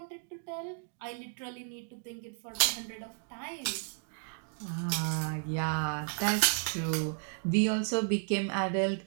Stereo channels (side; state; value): left; silent; 56 dB below the other